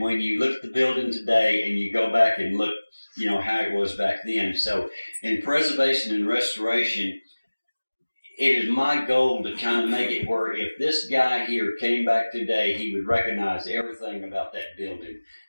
you look at the building today and you go back and look, how it was back then. So in preservation and restoration, it is my goal to kind of make it where if this guy here came back today, he would recognize everything about that building.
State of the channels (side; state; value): both; inverted; correlation -1.00